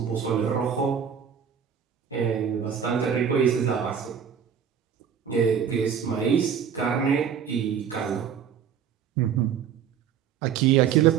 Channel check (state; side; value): quieter; left; 7.8 dB